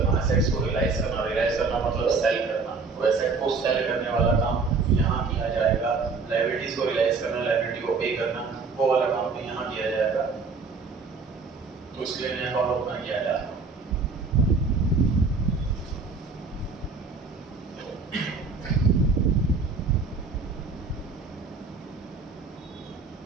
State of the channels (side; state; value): left; quieter; 4.4 dB